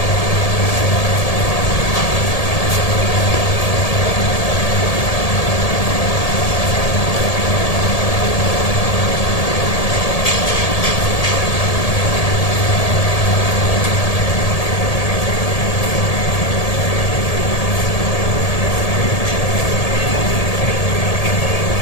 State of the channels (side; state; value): right; late; 1.8 ms